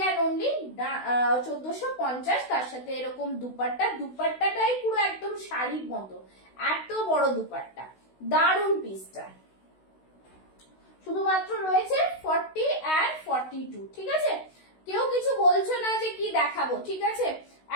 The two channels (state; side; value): late; right; 16 ms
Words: অ্যান্ড অনলি 1450। তার সাথে এরকম দুপাট্টা, দুপাট্টাটাই পুরো একদম শাড়ির মতো, এত বড় দুপাট্টা, দারুণ পিসটা। শুধুমাত্র রয়েছে 40 and 42, ঠিক আছে। কেউ কিছু বলছো না যে কি দেখাবো, ঠিক আছে।